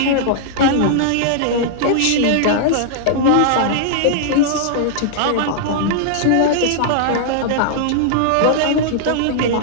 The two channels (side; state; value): both; different; correlation -0.01